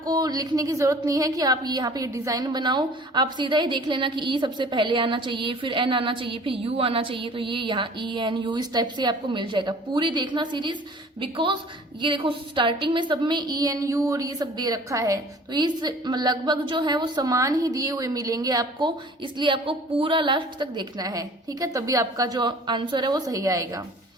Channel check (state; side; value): normal; both; correlation 0.48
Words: लिखने की जरूरत नहीं है कि आप यहाँ पे डिजाइन बनाओ, आप सीधा ही देख लेना कि ई सबसे पहले आना चाहिए, फिर एन आना चाहिए, फिर यू आना चाहिए, तो ये यहाँ ई एन यू इस टाइप से आपको मिल जाएगा। पूरी देखना सीरीज, बिकॉज ये देखो स्टार्टिंग में सब में ई एन यू और ये सब दे रखा है, तो इस लगभग जो है वो समान ही दिए हुए मिलेंगे आपको, इसलिए आपको पूरा लास्ट तक देखना है, ठीक है, तभी आपका जो आंसर है वो सही आएगा।